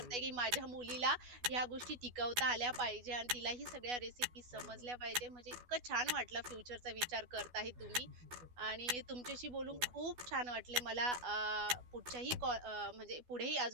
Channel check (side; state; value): left; late; 12 ms